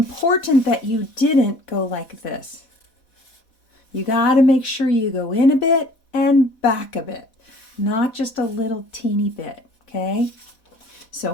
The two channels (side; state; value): right; late; 4.1 ms